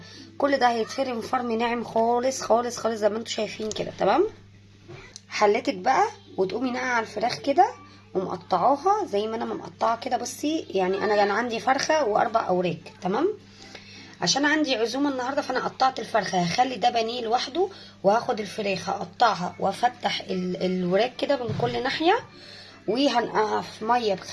كل ده هيتفرم فرم ناعم خالص خالص خالص زي ما انتم شايفين كده. تمام. حلتك بقى وتقومي ناقعه على الفراخ كده ومقطعاها زي ما انا مقطعه كده. بصي يعني انا كان عندي فرخه واربع اوراق. تمام. عشان عندي عزومه النهارده فانا قطعت الفرخه، هخلي ده بانيه لوحده، وهاخد الفراخ هقطعها وافتح الوراك كده من كل ناحيه، وهنقعها في ميه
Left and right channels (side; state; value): both; identical; correlation 1.00